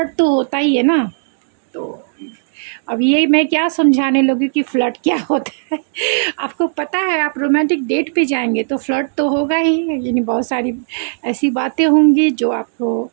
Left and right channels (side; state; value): left; silent; digital silence